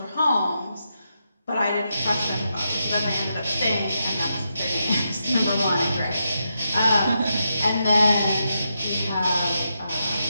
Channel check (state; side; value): inverted; both; correlation -0.84